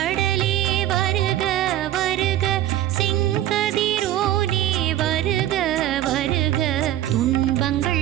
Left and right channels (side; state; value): left; quieter; 13.1 dB